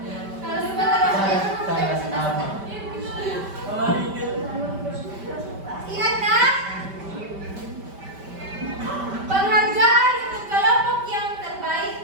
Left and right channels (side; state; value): left; late; 5.1 ms